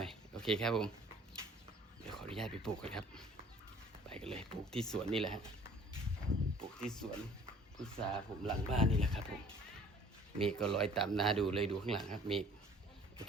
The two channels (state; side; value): normal; both; correlation 0.53